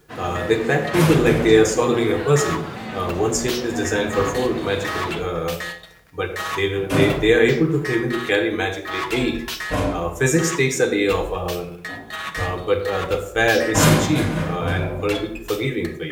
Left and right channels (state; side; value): identical; both; correlation 1.00